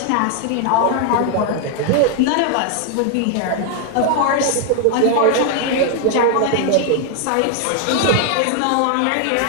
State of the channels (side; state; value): both; different; correlation 0.00